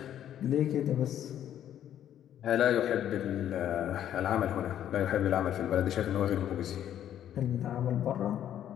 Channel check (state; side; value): quieter; right; 10.7 dB